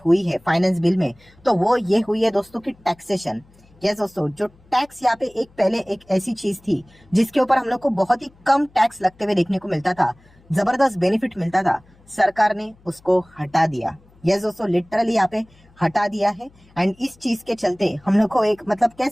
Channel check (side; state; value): left; noise; hum, 29 dB below the sound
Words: हुई है finance bill में, तो वो ये हुई है दोस्तों की टैक्सेशन। यस दोस्तों, जो टैक्स यहाँ पे पहले एक ऐसी चीज थी जिसके ऊपर हम लोग को बहुत ही कम टैक्स लगते हुए देखने को मिलता था, जबरदस्त बेनिफिट मिलता था, सरकार ने उसको हटा दिया। यस दोस्तों, लिटरली यहाँ पे हटा दिया है। एंड इस चीज के चलते हम लोग को एक मतलब कह